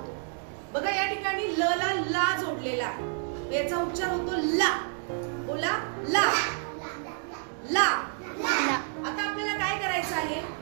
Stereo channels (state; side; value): silent; left; 56 dB below the other